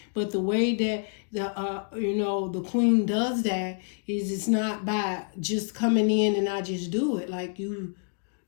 But the way that the Queen does that is it's not by just coming in and I just do it. Like you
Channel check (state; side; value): silent; right; 56 dB below the other